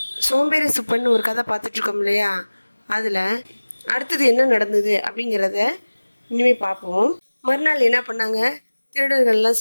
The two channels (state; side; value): inverted; both; correlation -1.00